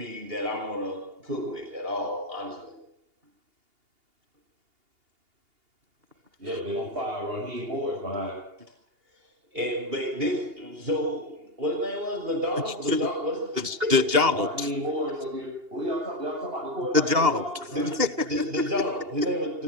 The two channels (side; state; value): left; late; 2.8 ms